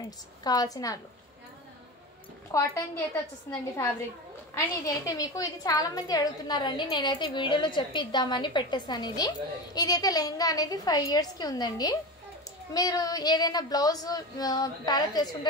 కావాల్సిన వాళ్ళు. కాటన్ది అయితే వచ్చేస్తుందండి ఫ్యాబ్రిక్. అండ్ ఇది అయితే మీకు ఇది చాలా మంది అడుగుతున్నారండి. నేనైతే వీడియోలో చెప్పి ఇద్దామని పెట్టేస్తాను. ఇదైతే లెహంగా అనేది 5 yearsకి ఉందండి. మీరు ఏదైనా బ్లౌజ్ ప్యారప్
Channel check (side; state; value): both; normal; correlation 0.25